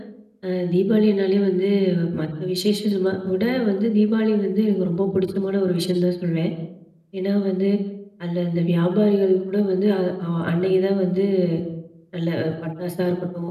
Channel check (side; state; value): both; identical; correlation 1.00